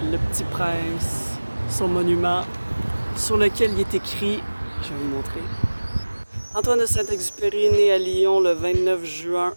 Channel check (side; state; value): both; inverted; correlation -1.00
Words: le Petit Prince, son monument sur lequel il est écrit, je vais vous montrer. Antoine de Saint-Exupéry, né à Lyon le 29 juin